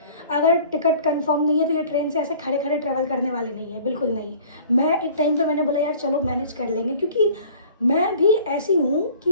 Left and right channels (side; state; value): both; inverted; correlation -0.48